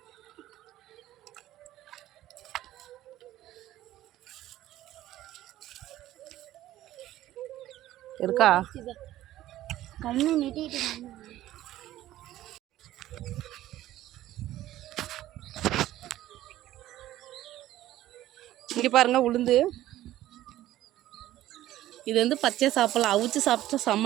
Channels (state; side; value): quieter; left; 14.3 dB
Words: இருக்கா? கண்ணு நெட்டிட்டு இங்கே பாருங்கள் உளுந்து. இது வந்து பச்சை சாப்பிடலாம். அவிச்சு சாப்பிட்டா